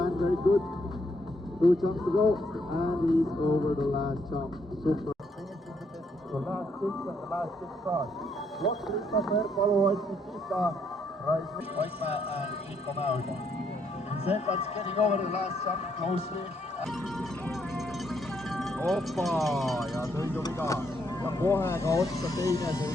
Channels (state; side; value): normal; both; correlation 0.73